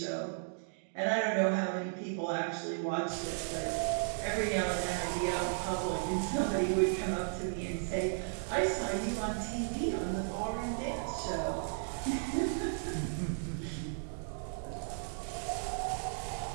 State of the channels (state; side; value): silent; left; digital silence